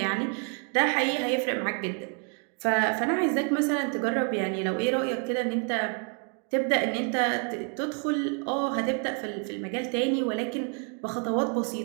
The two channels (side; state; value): left; quieter; 39.4 dB